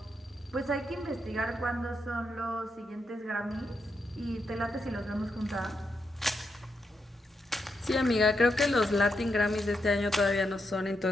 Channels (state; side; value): normal; both; correlation 0.83